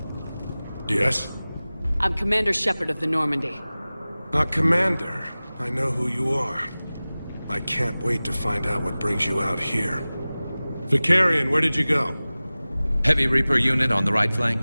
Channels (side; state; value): both; inverted; correlation -0.98